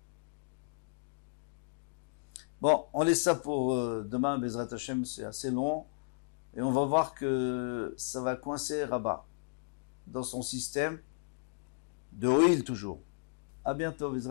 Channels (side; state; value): right; silent; digital silence